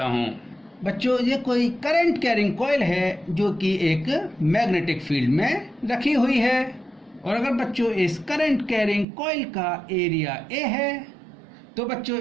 हूं। बच्चों ये कोई करंट कैरिंग कॉइल है जो कि एक मैग्नेटिक फील्ड में रखी हुई है। और अगर बच्चों इस करंट कैरिंग कॉइल का एरिया ए है तो बच्चों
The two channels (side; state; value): left; drops out; at 9.1 s